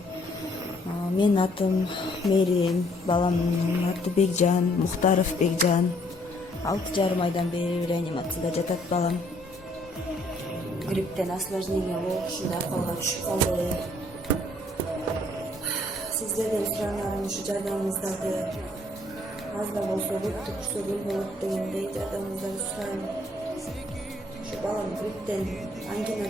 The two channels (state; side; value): normal; both; correlation 0.64